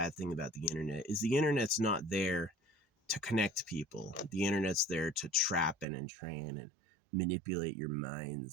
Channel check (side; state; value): left; drops out; at 5.9 s